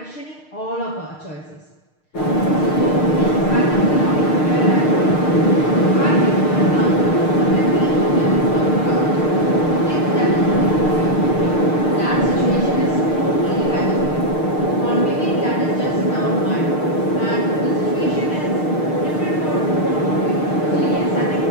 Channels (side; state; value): right; late; 6.6 ms